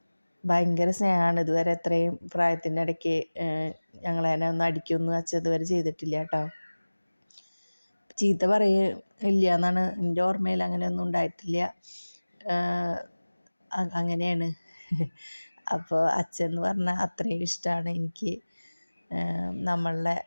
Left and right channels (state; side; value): inverted; both; correlation -1.00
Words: ഭയങ്കര സ്നേഹമാണ്. ഇതുവരെ എത്രയും പ്രായത്തിൻ്റെ ഇടയ്ക്ക് ഞങ്ങളെ ഒന്ന് അടിക്കൊന്നും അച്ഛൻ ഇതുവരെ ചെയ്തിട്ടില്ല കേട്ടോ. ചീത്ത പറയില്ല എന്നാണ് എൻ്റെ ഓർമ്മയിൽ, അങ്ങനെയൊന്നും ഉണ്ടായിട്ടില്ല. അങ്ങനെയാണ്. അപ്പോൾ അച്ഛൻ എന്ന് പറഞ്ഞാൽ അത്രയും ഇഷ്ടമാണ് എനിക്ക്. നമ്മളുടെ